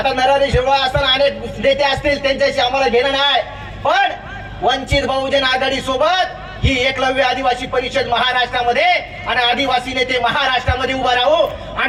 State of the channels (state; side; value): identical; both; correlation 1.00